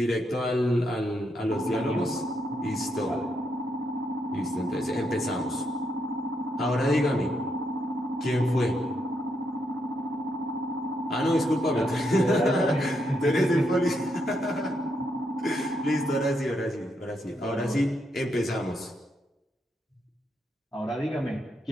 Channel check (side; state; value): both; normal; correlation 0.79